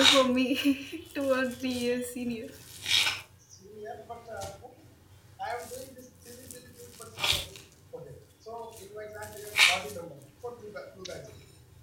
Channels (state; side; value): identical; both; correlation 1.00